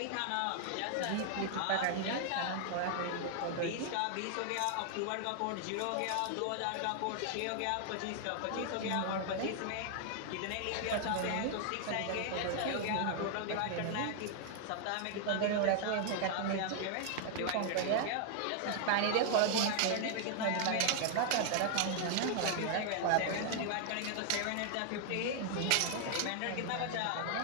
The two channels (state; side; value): different; both; correlation 0.00